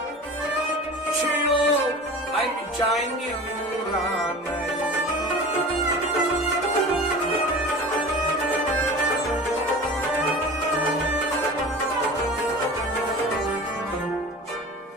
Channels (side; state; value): both; normal; correlation 0.36